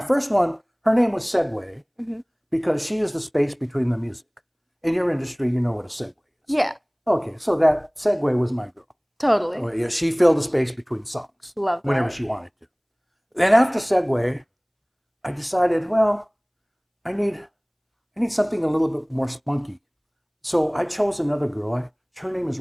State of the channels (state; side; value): identical; both; correlation 1.00